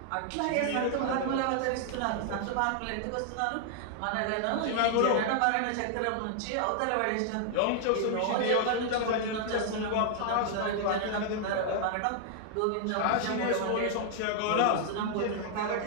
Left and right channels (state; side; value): different; both; correlation 0.00